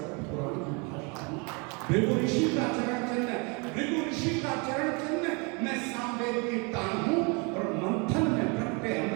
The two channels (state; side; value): quieter; left; 31.4 dB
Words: पुराण की भाषा हूँ। भृगु ऋषि का चरण चिन्ह, भृगु ऋषि का चरण चिन्ह मैं सामवेद की तान हूँ और मंथन में प्रकटे